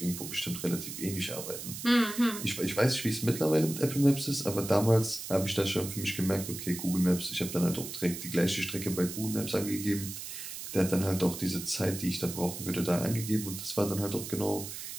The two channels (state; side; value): noise; right; hiss, 8 dB below the sound